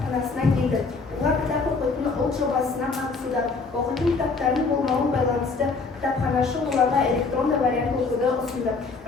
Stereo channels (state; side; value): quieter; right; 4.3 dB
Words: келді. Олар кітап оқитын ұлт жобасына қатысуда. Оқитын кітаптардың болмауын байланысты кітапханашы оларға электронды вариант оқуды ұсынды.